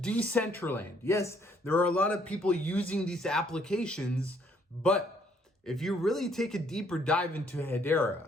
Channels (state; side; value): normal; both; correlation 0.66